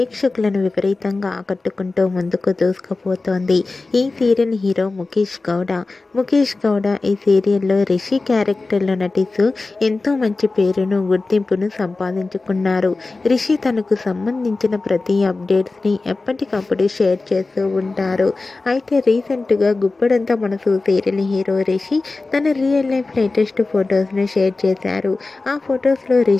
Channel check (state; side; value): quieter; right; 3.5 dB